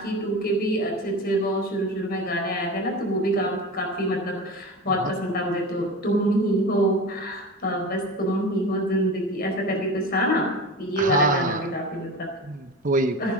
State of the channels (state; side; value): normal; both; correlation 0.30